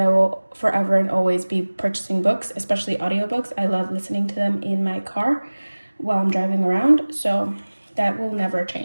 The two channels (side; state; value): both; inverted; correlation -1.00